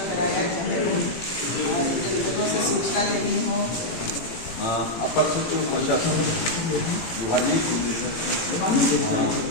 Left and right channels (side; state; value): right; late; 18 ms